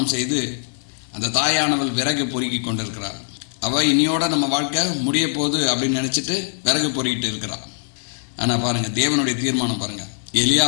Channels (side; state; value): right; silent; 62 dB below the other